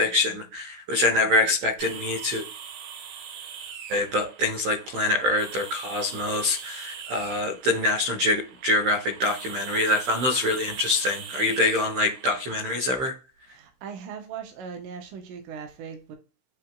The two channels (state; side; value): late; left; 16 ms